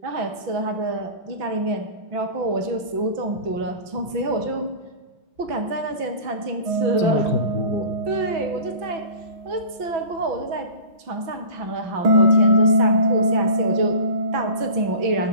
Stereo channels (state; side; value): late; left; 6.0 ms